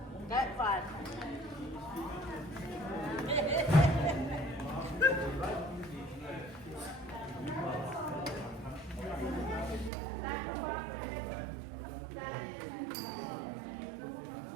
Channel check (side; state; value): left; drops out; at 9.9 s